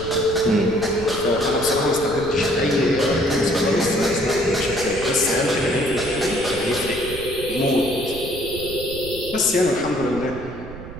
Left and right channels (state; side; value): noise; right; rumble, 12 dB below the sound